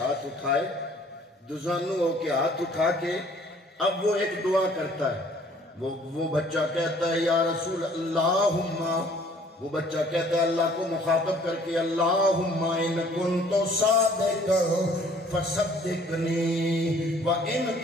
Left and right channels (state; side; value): normal; both; correlation 0.57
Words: اٹھائے، دزانو ہو کے ہاتھ اٹھا کے اب وہ ایک دعا کرتا ہے۔ وہ بچہ کہتا ہے یا رسول اللہم، وہ بچہ کہتا ہے اللہ کو مخاطب کر کے اللہم ان کنت صادقا فصدقنی وان